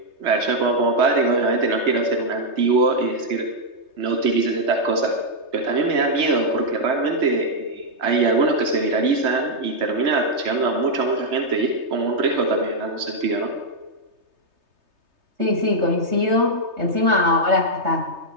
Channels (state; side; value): late; left; 3.3 ms